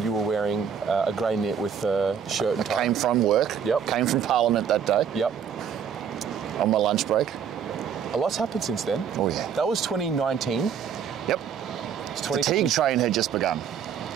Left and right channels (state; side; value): quieter; left; 7.6 dB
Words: you were wearing a grey knit with a shirt and tie. Came from work. Yep. Came from Parliament that day. Yep. On my lunch break. A lot's happened since then. Oh yeah. That was 2019. Yep. It's The fatigue train had just begun.